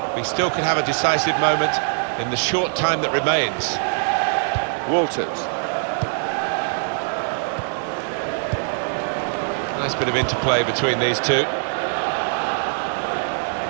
We still could have a decisive moment in the short time that remains. Walters. Nice bit of interplay between these two.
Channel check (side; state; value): left; silent; digital silence